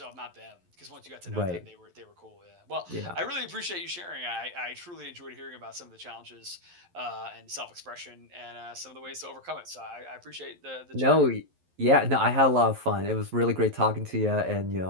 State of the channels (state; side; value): late; left; 11 ms